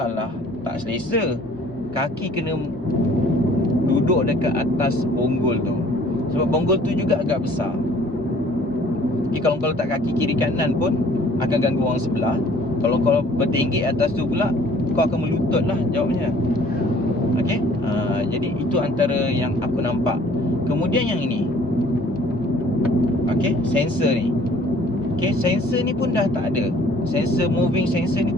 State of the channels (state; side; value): normal; both; correlation 0.55